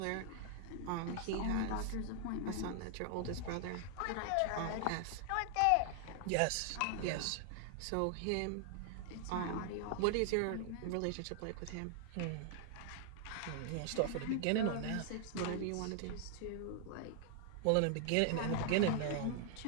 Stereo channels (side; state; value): both; different; correlation 0.00